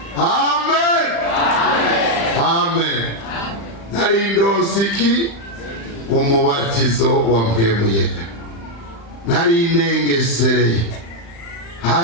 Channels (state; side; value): late; right; 35 ms